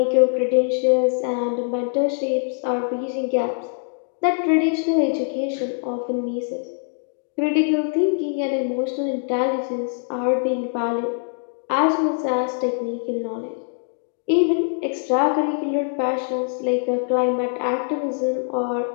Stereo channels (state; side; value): silent; right; 59 dB below the other